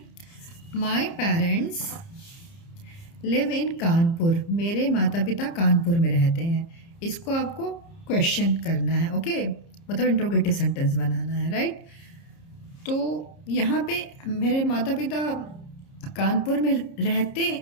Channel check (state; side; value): late; right; 30 ms